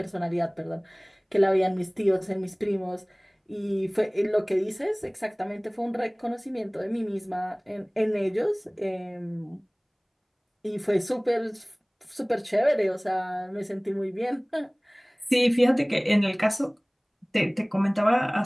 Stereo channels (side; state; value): both; identical; correlation 1.00